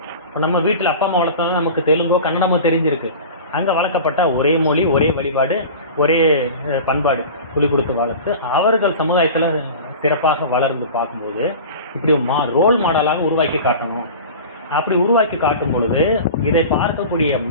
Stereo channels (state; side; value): inverted; both; correlation -0.35